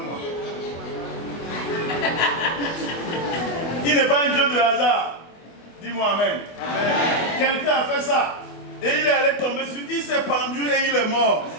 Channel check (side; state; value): right; late; 24 ms